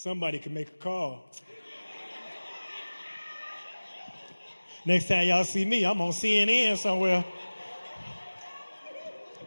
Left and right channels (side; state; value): both; inverted; correlation -1.00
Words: can make a call. Next time y'all see me, I'm on CNN somewhere.